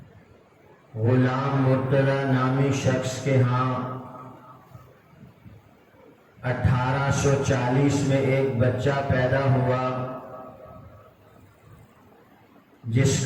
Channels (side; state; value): both; identical; correlation 1.00